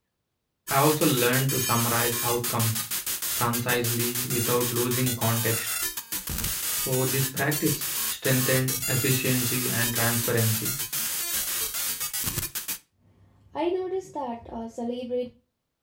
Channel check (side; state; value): both; identical; correlation 1.00